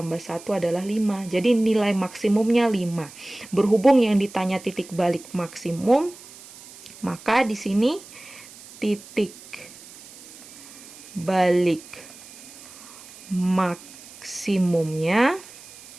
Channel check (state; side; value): noise; right; hiss, 19 dB below the sound